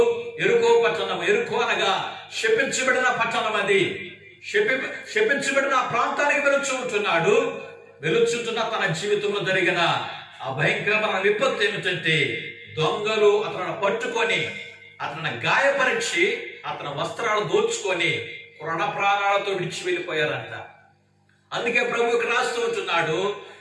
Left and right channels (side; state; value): both; identical; correlation 1.00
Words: ఎరుకో పట్టణం, ఎరుకో అనగా శపించబడిన పట్టణం, అది శపించబడిన ప్రాంతానికి వెలుచుంటున్నాడు. వెలుచుంటున్న తన జీవితంలో జరిగిన ఆ భయంకరమైన విపత్తు ఏమిటంటే దొంగలు అతను పట్టుకొని అతను గాయపరిచి అతని వస్త్రాలు దోచుకొని ప్రాణ ప్రాణాలతో విడిచి వెళ్ళిపోయారంట. అందుకే ప్రభువుకి రాస్తూ ఉంటున్నాడు,